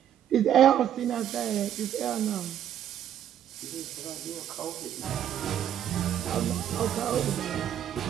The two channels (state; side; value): quieter; left; 10.2 dB